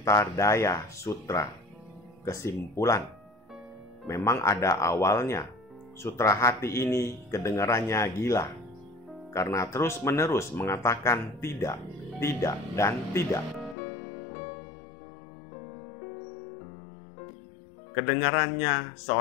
Daya Sutra. Kesimpulan, memang ada awalnya. Sutra hati ini kedengarannya gila, karena terus-menerus mengatakan tidak, tidak, dan tidak. Kedengarannya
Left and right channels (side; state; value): right; drops out; at 13.8 s